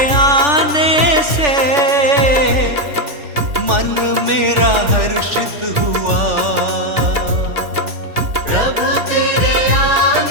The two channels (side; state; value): left; late; 3.4 ms